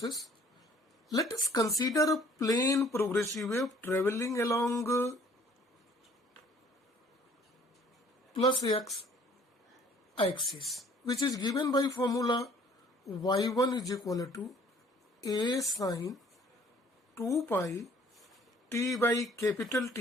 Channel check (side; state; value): both; normal; correlation 0.57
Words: Let us consider a plane progressive wave traveling along plus x axis, which is given by formula y1 is equal to a sine 2 pi t by capital